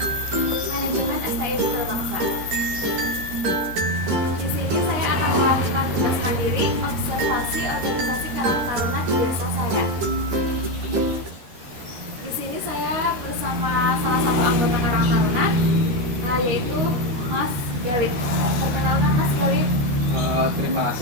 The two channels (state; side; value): late; left; 12 ms